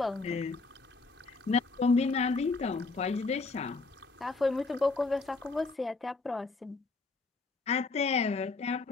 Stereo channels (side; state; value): right; quieter; 3.8 dB